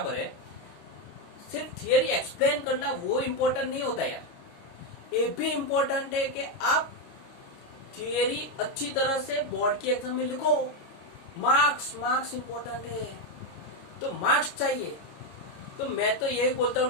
है, सिर्फ थियरी एक्सप्लेन करना वो इम्पोर्टेंट नहीं होता यार। ये भी इम्पोर्टेंट है कि आप थियरी अच्छी तरह से बोर्ड की एग्जाम में लिखो। मार्क्स इम्पोर्टेंट है, तो मार्क्स चाहिए। तो मैं तो यही बोलता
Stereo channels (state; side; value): late; right; 29 ms